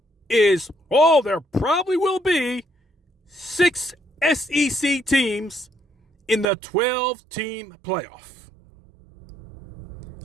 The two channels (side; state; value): left; drops out; at 6.5 s